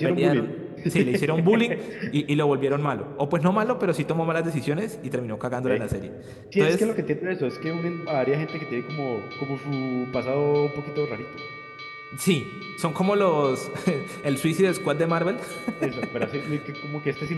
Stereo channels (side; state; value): both; identical; correlation 1.00